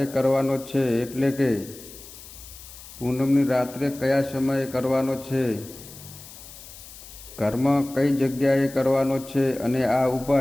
કરવાનો છે, એટલે કે પૂનમની રાત્રે કયા સમયે કરવાનો છે, ઘરમાં કઈ જગ્યાએ કરવાનો છે અને આ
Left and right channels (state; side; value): noise; left; hiss, 17 dB below the sound